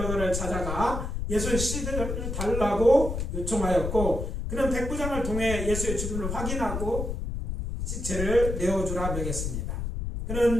찾아가 예수의 시대를 달라고 요청하였고 그는 백부장을 통해 예수의 죽음을 확인하고 시체를 내어주라 명했습니다.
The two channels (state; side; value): noise; left; rumble, 3 dB below the sound